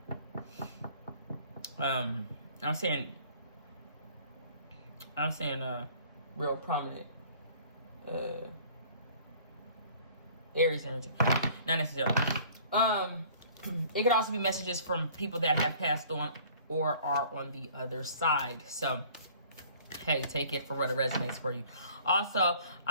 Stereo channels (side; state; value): both; inverted; correlation -0.52